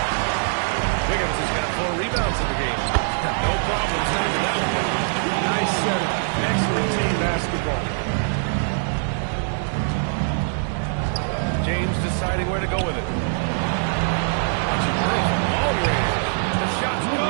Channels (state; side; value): silent; left; 64 dB below the other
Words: Wiggins has got 4 rebounds in the game. No problem setting it out. Nice setup. Excellent team basketball. James deciding where to go with it. The shot's